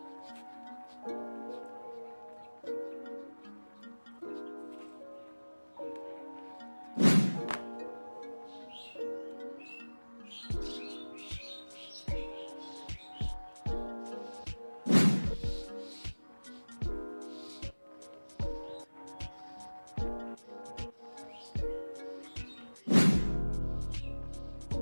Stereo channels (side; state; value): both; inverted; correlation -1.00